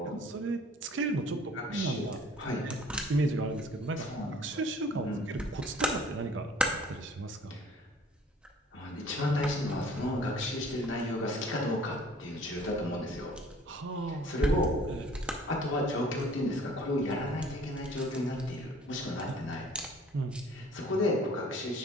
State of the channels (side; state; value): both; normal; correlation 0.52